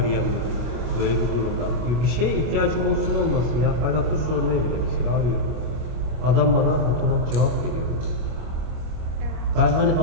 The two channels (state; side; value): late; left; 25 ms